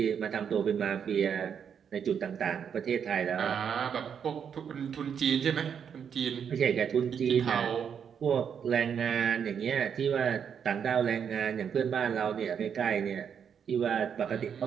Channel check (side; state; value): left; quieter; 7.6 dB